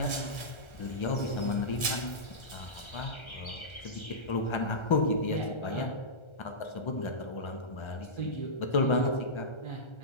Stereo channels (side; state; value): right; late; 1.3 ms